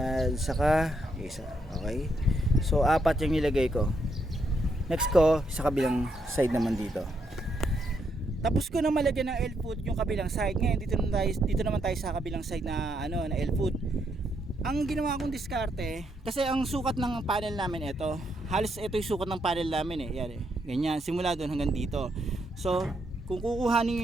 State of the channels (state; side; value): normal; both; correlation 0.77